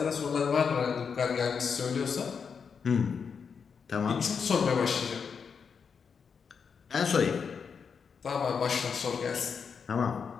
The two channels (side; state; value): right; quieter; 6.2 dB